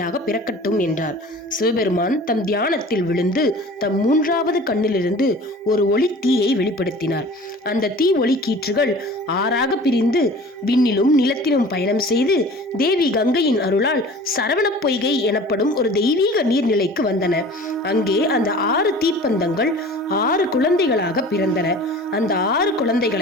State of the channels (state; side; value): normal; both; correlation 0.43